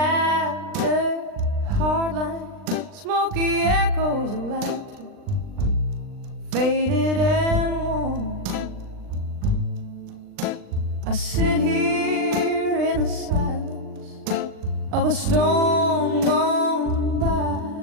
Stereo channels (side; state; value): left; late; 39 ms